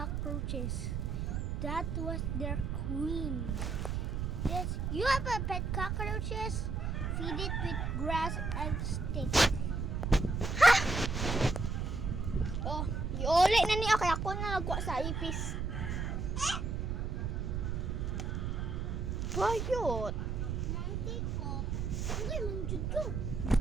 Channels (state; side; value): noise; right; rumble, 1 dB below the sound